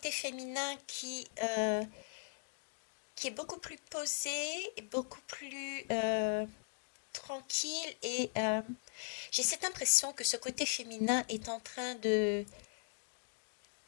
féminin qui est beaucoup plus posé, et beaucoup plus tranquille et j'ai cette impression que ce côté féminin est en train de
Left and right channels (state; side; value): silent; right; digital silence